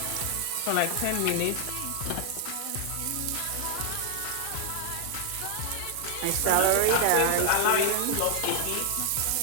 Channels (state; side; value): different; both; correlation 0.00